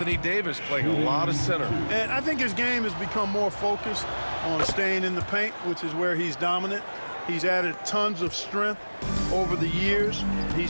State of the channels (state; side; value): inverted; both; correlation -1.00